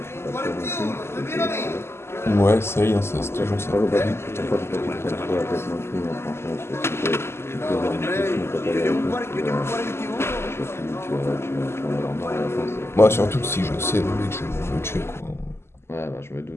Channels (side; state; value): right; late; 0.12 ms